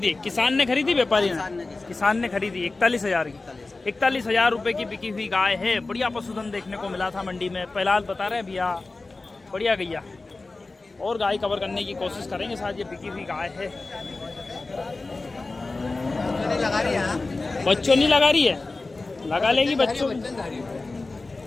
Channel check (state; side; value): quieter; right; 3.4 dB